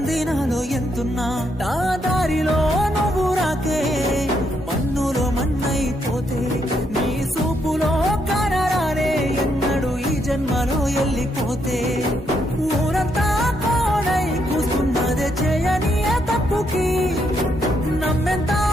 ఎంతున్నా. నా దారిలో నువ్వు రాకే మన్నులో మన్నైపోతే. నీ సూపులో కనరానే ఎన్నడు ఈ జన్మలో వెళ్ళిపోతే. ఊరంతా కోడై కూస్తున్నదే చేయని తప్పుకి. నమ్మెంత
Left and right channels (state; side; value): normal; both; correlation 0.76